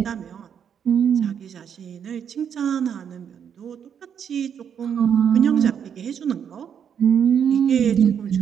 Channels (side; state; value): left; quieter; 8.1 dB